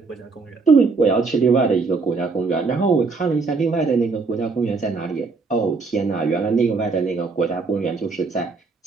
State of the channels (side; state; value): left; quieter; 4.3 dB